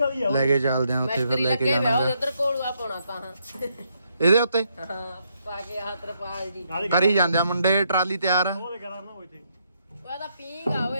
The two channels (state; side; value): inverted; both; correlation -0.76